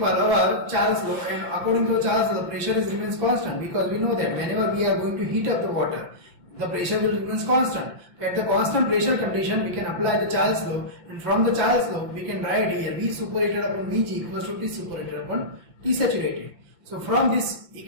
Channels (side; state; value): left; late; 5.8 ms